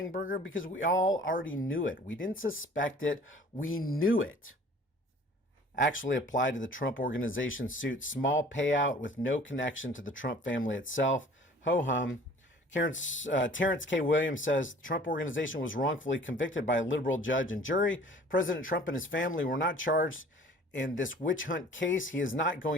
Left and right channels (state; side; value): normal; both; correlation 0.50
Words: burger because we all already knew it. We didn't suspect it. We knew it. Actually applied to the Trump Organization suit. Small payout with no connection to the Trump family itself. Ho-hum. Terrence K. Williams says the Trump Organization was wrongfully convicted by a liberal judge and jury. President Trump and his family were not charged in this witch hunt case. He is not